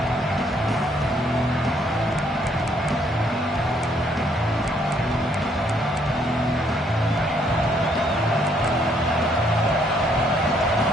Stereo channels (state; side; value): normal; both; correlation 0.68